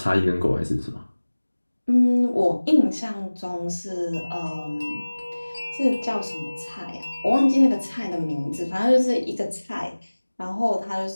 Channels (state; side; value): inverted; both; correlation -1.00